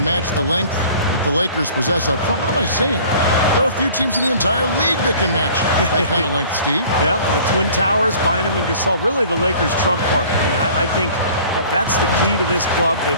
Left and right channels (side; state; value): both; inverted; correlation -0.48